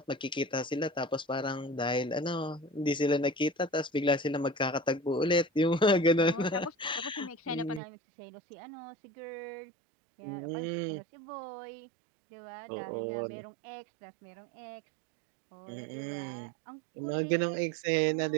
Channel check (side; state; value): left; drops out; at 7.8 s